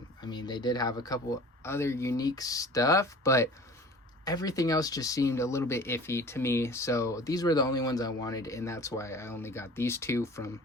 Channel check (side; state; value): both; normal; correlation 0.43